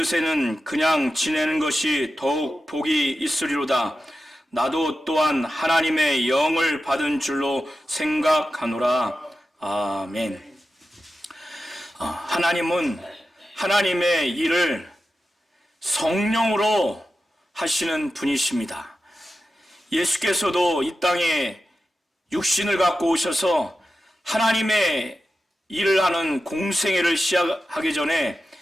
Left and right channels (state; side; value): normal; both; correlation 0.92